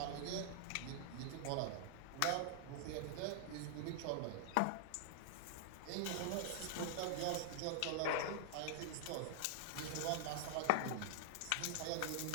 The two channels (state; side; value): different; both; correlation -0.01